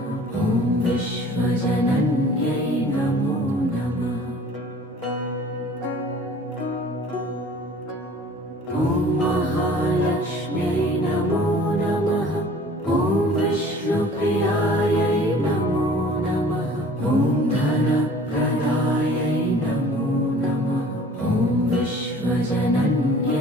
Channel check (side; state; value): both; normal; correlation 0.48